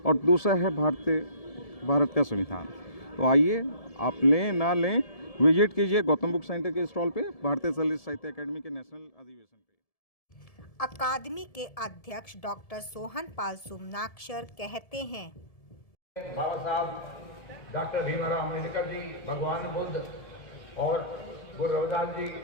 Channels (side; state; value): right; late; 1.7 ms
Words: और दूसरा है भारत का संविधान। तो आइए आप लें ना लें, विजिट कीजिए गौतम बुक सेंटर के स्टॉल पे, भारतीय दलित साहित्य अकेडमी के नेशनल अधिवेशन पे। अकादमी के अध्यक्ष डॉक्टर सोहन पाल सुमनाक्षर कहते हैं, बाबा साहब डॉक्टर भीमराव अम्बेडकर जी, भगवान बुद्ध और गुरु रविदास जी